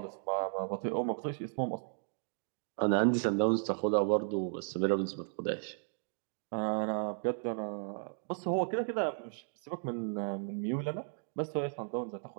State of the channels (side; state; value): left; silent; digital silence